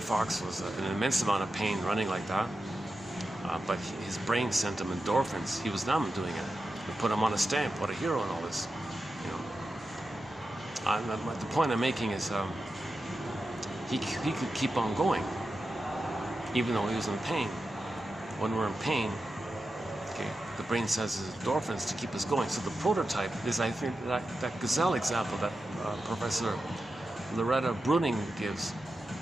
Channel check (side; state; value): both; normal; correlation 0.90